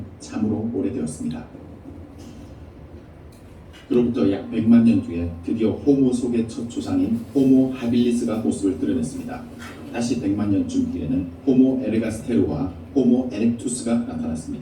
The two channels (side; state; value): both; identical; correlation 1.00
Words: 참으로 오래되었습니다. 그로부터 약 100만 년 뒤에 드디어 호모 속의 첫 조상인 호모 하빌리스가 모습을 드러냈습니다. 다시 100만 년쯤 뒤에는 호모 에르가스테르와 호모 에렉투스가